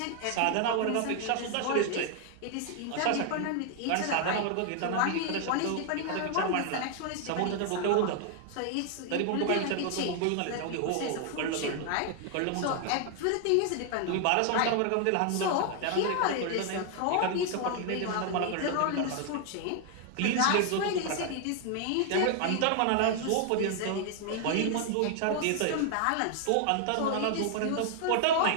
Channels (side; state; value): both; different; correlation 0.00